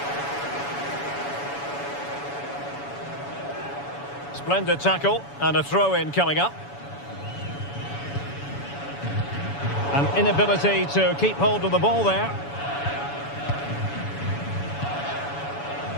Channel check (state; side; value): late; right; 7.1 ms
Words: Splendid tackle and a throw-in coming up. An inability to keep hold of the ball there.